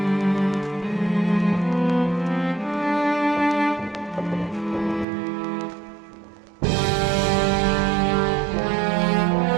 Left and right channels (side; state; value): left; drops out; at 5.1 s